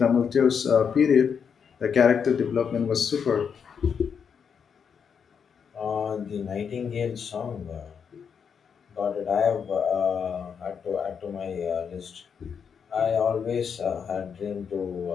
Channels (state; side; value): quieter; right; 6.8 dB